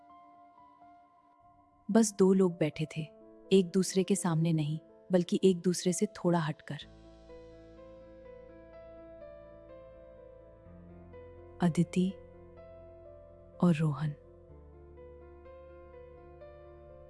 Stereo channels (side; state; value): both; identical; correlation 1.00